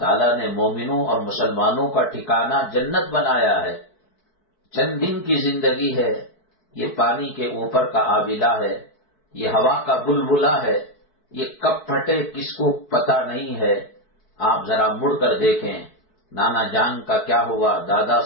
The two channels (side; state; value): right; late; 4.6 ms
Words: نے مومنوں اور مسلمانوں کا ٹھکانہ جنت بنایا ہے۔ چند دن کی زندگی ہے، یہ پانی کے اوپر کا آبلہ ہے، یہ ہوا کا بلبلہ ہے، یہ کب پھٹے کس کو پتہ نہیں ہے۔ آپ ذرا مڑ کر دیکھیں، نانا جان کا کیا ہوا، دادا